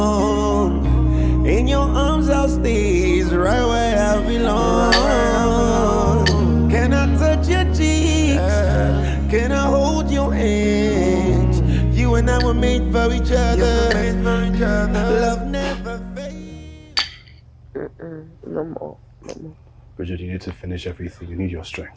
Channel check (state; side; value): identical; both; correlation 1.00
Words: In your arms I'll stay right where I belong. Can I touch your cheeks? Can I hold your hands? You and I were made for each other. Love never fades. No more. Bridget, you need to finish everything. You need your